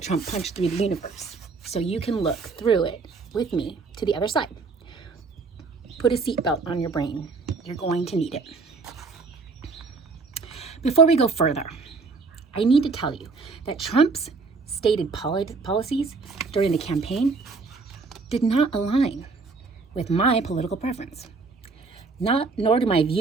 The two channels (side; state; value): left; quieter; 4.3 dB